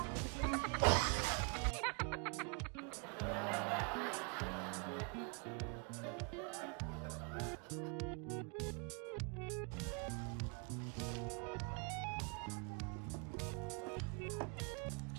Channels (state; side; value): quieter; left; 36.0 dB